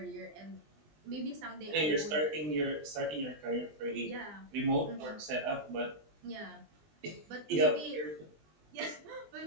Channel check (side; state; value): left; late; 20 ms